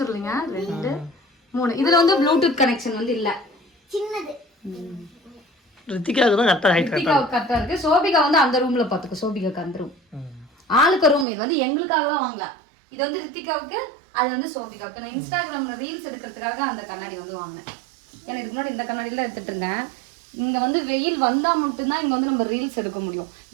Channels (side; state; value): left; drops out; at 11.2 s